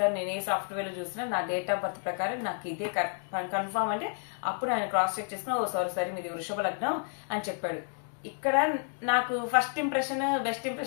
నేను ఏ సాఫ్ట్వేర్ లో చూసినా నా డేట్ ఆఫ్ బర్త్ ప్రకారం నాకు ఇదే కన్ఫర్మ్ అంటే, అప్పుడు ఆయన క్రాస్ చెక్ చేసుకుని, ఓ సారీ మీది వృషభ లగ్నం అని చెప్పాడు. ఇక్కడ నాకు ఫస్ట్ ఇంప్రెషన్ బెస్ట్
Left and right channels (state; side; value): silent; right; 57 dB below the other